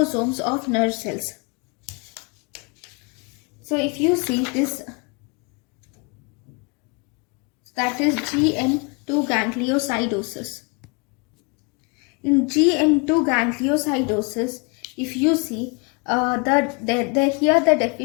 of nerve cells. So if you see this, that is GM2 gangliosidosis. In GM2 gangliosidosis, if you see, here the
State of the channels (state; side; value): quieter; right; 31.8 dB